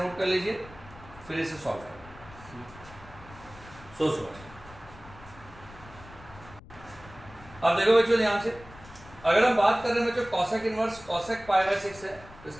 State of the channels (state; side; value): noise; left; rumble, 19 dB below the sound